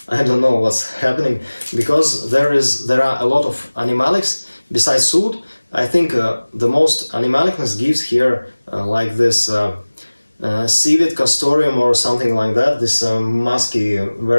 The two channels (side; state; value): both; inverted; correlation -1.00